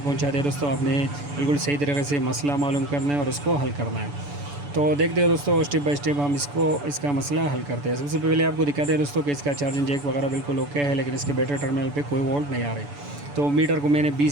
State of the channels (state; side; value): late; left; 7.0 ms